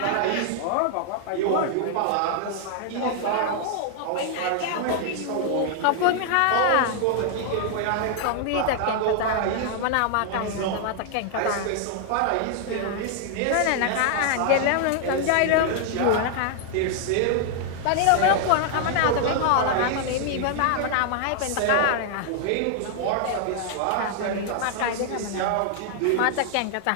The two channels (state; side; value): different; both; correlation 0.00